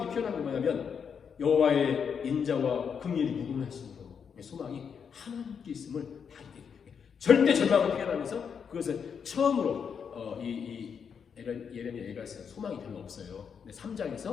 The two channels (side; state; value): right; quieter; 6.8 dB